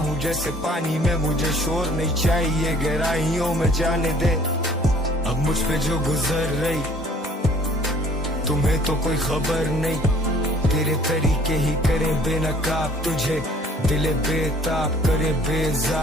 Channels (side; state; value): both; normal; correlation 0.55